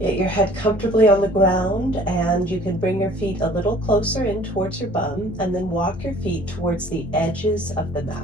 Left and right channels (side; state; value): both; normal; correlation 0.52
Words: your head comfortably on the ground, and you can bring your feet a little closer in towards your bum, and then walk your feet towards the edges of the